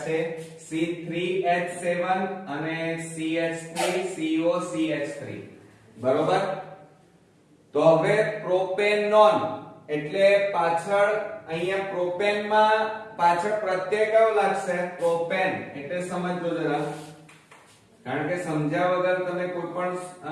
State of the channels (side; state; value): both; identical; correlation 1.00